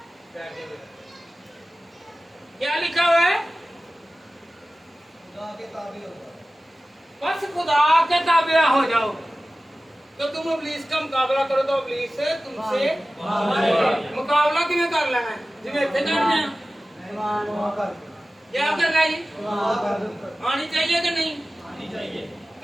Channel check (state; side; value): normal; both; correlation 0.96